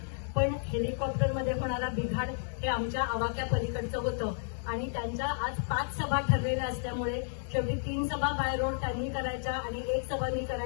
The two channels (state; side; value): silent; right; digital silence